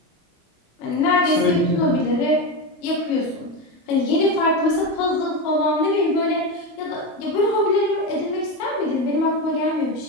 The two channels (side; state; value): right; late; 23 ms